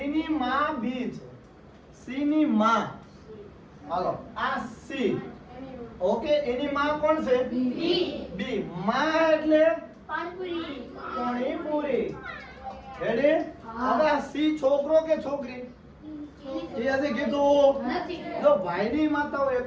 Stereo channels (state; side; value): identical; both; correlation 1.00